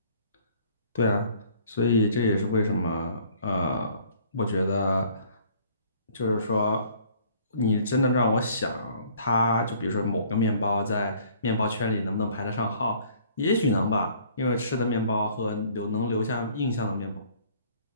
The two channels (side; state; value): both; inverted; correlation -0.56